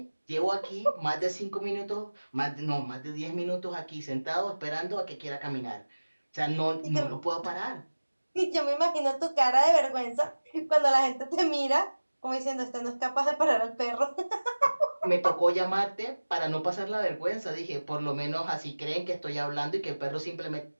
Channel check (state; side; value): inverted; both; correlation -1.00